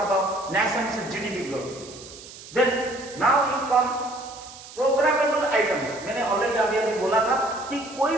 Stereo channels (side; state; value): right; noise; hiss, 17 dB below the sound